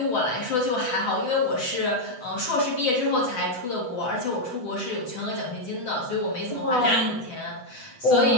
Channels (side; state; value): right; late; 8.0 ms